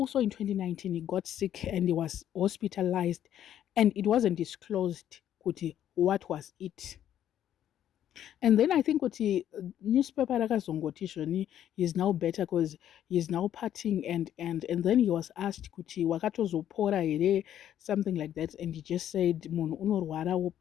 in 2019, he got sick and he was hospitalized, and it wasn't disclosed kuti what was it. And then I think kuti newspaper rakazongoti zvoni he's now better because he's now partying, and then he was asked kuti wakatozopora here, something like that, and he just said munhu unorwara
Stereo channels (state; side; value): quieter; right; 10.8 dB